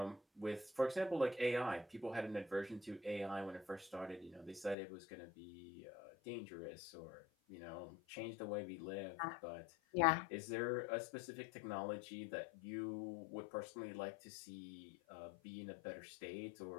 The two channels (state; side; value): drops out; right; at 4.8 s